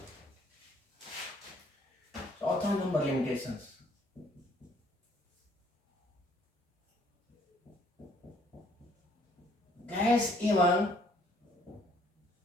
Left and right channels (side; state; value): both; normal; correlation 0.63